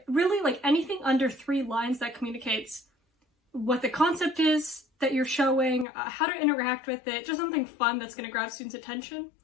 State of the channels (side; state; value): right; drops out; at 5.9 s